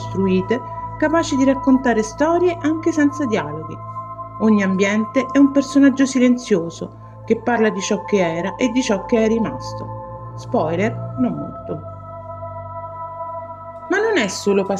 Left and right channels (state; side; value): identical; both; correlation 1.00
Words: capaci di raccontare storie anche senza dialoghi. Ogni ambiente è un personaggio silenzioso che parla di ciò che era e di ciò che è rimasto. Spoiler, non molto. Ma non è solo